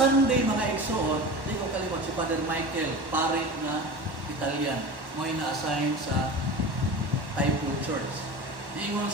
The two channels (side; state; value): left; late; 1.1 ms